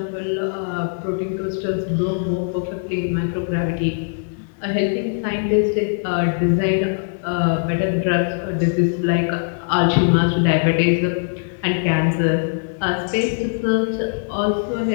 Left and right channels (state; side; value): silent; right; digital silence